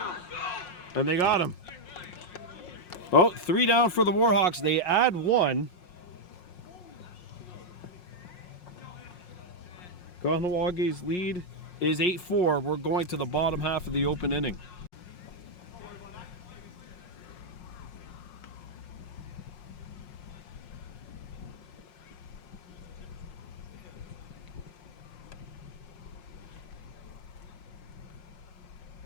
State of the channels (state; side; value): late; right; 5.5 ms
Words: And they got him. Oh, 3 down for the Warhawks. They add 1. Kahnawake's lead is 8-4. We're going to the bottom half of the open inning.